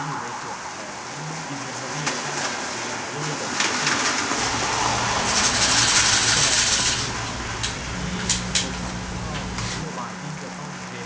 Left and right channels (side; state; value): both; identical; correlation 1.00